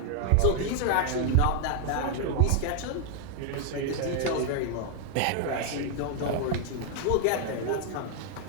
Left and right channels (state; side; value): different; both; correlation 0.00